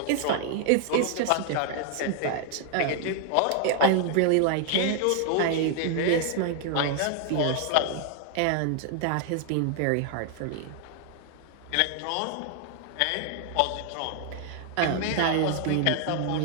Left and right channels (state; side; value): different; both; correlation 0.00